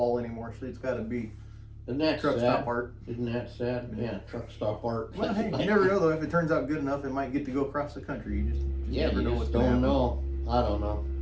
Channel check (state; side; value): identical; both; correlation 1.00